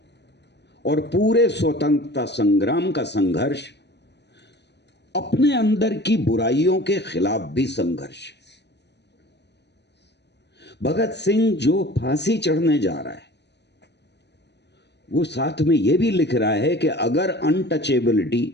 और पूरे स्वतंत्रता संग्राम का संघर्ष अपने अंदर की बुराइयों के खिलाफ भी संघर्ष। भगत सिंह जो फांसी चढ़ने जा रहा है, वो साथ में यह भी लिख रहा है कि अगर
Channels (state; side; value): late; right; 0.50 ms